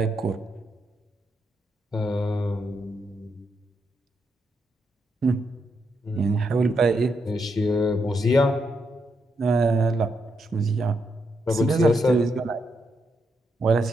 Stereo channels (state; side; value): normal; both; correlation 0.80